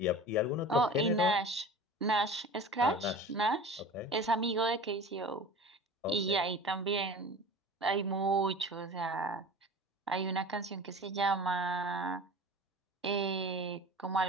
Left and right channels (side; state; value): both; normal; correlation 0.37